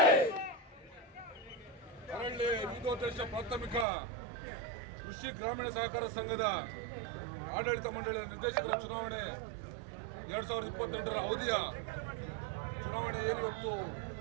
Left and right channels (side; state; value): left; drops out; at 3.9 s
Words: ಅರಳ್ಳಿ ವಿವಿಧೋದ್ದೇಶ ಪ್ರಾಥಮಿಕ ಕೃಷಿ ಗ್ರಾಮೀಣ ಸಹಕಾರ ಸಂಘದ ಆಡಳಿತ ಮಂಡಳಿಯ ನಿರ್ದೇಶಕರ ಚುನಾವಣೆ 2028ರ ಅವಧಿಯ ಚುನಾವಣೆ ಇವತ್ತು